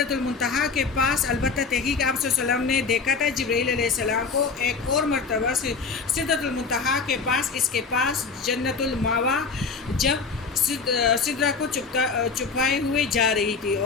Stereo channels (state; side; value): quieter; right; 4.8 dB